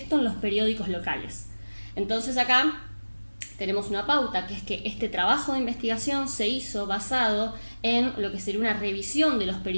en los periódicos locales. Entonces acá tenemos una pauta, que es que este trabajo de investigación se hizo basado en lo que sería una revisión de los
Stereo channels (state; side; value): inverted; both; correlation -1.00